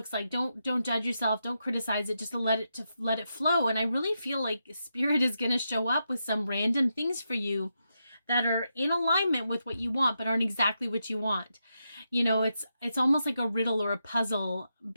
like. Don't judge yourself. Don't criticize it. Just let it flow. And I really feel like Spirit is going to show up with some random things for you that are in alignment with what you want, but aren't exactly what you want. You know, it's almost like a riddle or a puzzle,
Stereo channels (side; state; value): both; inverted; correlation -0.85